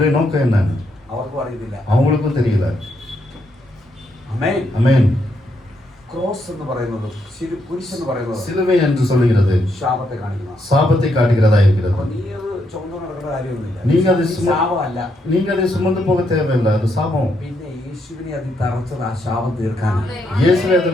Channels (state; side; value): normal; both; correlation 0.78